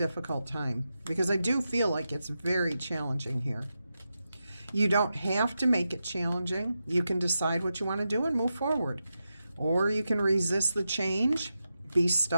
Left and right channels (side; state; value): both; inverted; correlation -0.89